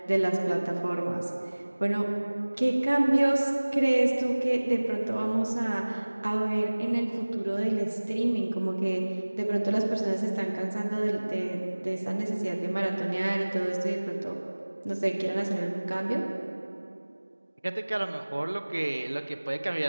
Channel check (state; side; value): inverted; both; correlation -1.00